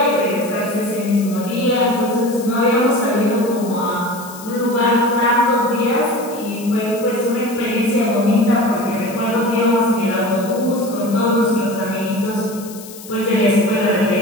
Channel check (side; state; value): left; noise; hiss, 16 dB below the sound